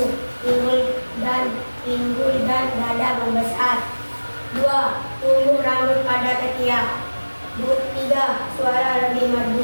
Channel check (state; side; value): inverted; both; correlation -1.00